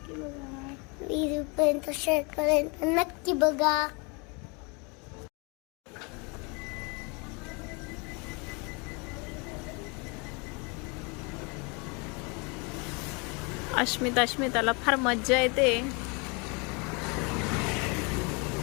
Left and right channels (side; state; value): right; quieter; 31.1 dB